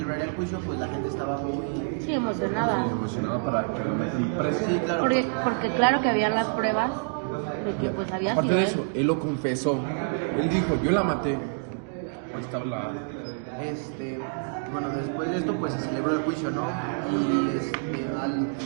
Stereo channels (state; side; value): silent; left; 60 dB below the other